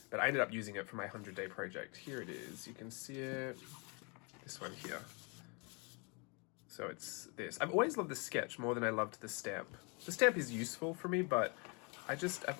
but I ended up using it for my 100-day project. Here it is, you can see it, this one here. So it's this. I've always loved the sketch more than I loved the stamp. The stamp is useful for me, but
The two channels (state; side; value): quieter; right; 32.5 dB